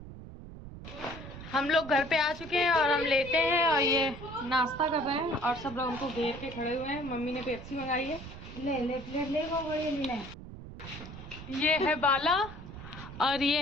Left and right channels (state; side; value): noise; right; rumble, 13 dB below the sound